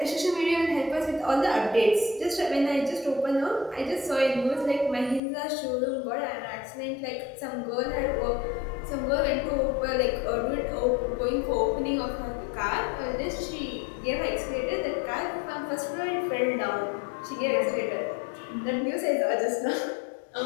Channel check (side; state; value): right; drops out; at 5.2 s